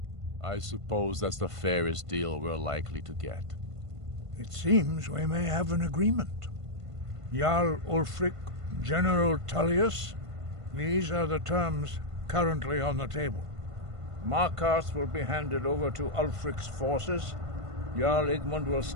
I suppose that's the fairest deal we're likely to get. It seems we may have an agreement. Jarl Ulfric, General Tullius, these are the terms currently on the table. Markarth will be handed over to Ulfric's forces, Jarl Igmund will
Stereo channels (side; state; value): left; late; 1.5 ms